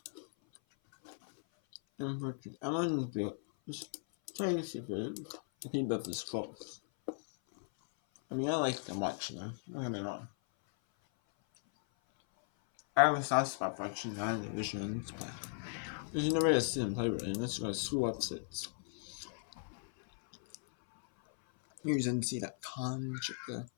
Unfortunately, I'm on the place if the team of this close. I mean, I like to watch them, don't get me wrong. I have a soft spot for watching 9 Division 1 play. Because you never get to see them play right, and that's why school upsets. Use NCAA.com, check the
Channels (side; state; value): right; silent; 53 dB below the other